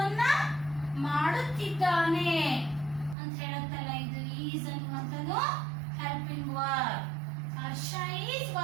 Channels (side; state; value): left; drops out; at 3.2 s